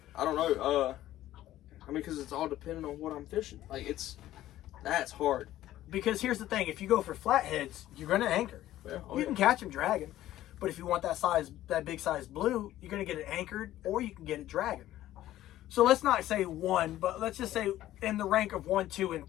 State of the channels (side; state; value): right; quieter; 14.0 dB